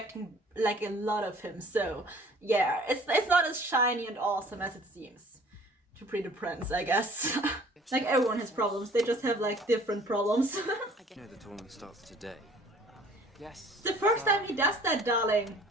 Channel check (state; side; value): normal; both; correlation 0.53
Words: like a lot of him. So yeah, it's not as shiny and awesome as it seems to Pretty Prince, I guess. Like, everyone has problems. They just have like different problems. You know the tournament starts today. Yes. It's the first time he does that, darling.